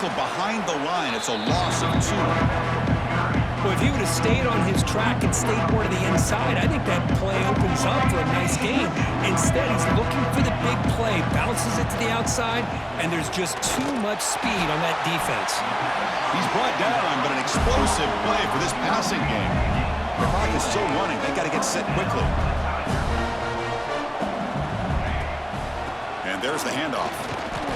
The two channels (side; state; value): both; identical; correlation 1.00